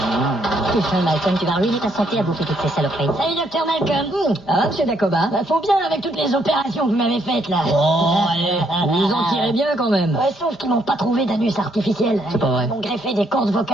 Putain, Malcolm, tu vas ruiner ta santé à bouffer toutes ces saloperies. Salut, docteur Malcolm. Ah, monsieur Dacoba? Bah, faut bien avec toutes les opérations que vous m'avez faites, là. Oh, allez, vous en tirez bien, quand même. Ouais, sauf qu'ils m'ont pas trouvé d'anus artificiel. C'est pas vrai. Ils m'ont greffé des cordes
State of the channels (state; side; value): normal; both; correlation 0.72